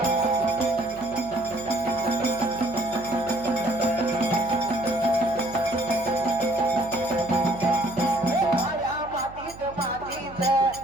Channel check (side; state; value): right; noise; hum, 18 dB below the sound